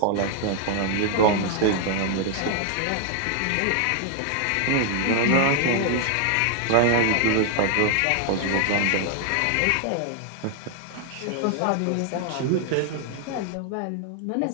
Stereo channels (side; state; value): both; different; correlation 0.00